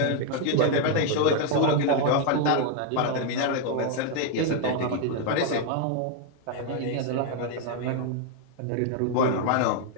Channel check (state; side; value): different; both; correlation 0.00